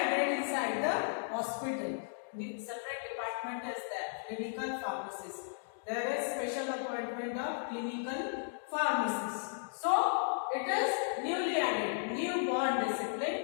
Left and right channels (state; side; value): silent; right; digital silence